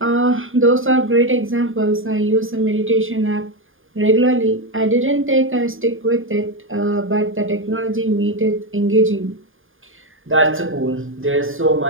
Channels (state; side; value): late; left; 0.59 ms